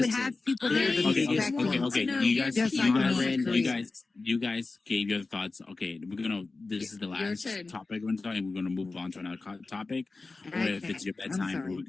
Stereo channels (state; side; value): quieter; right; 3.7 dB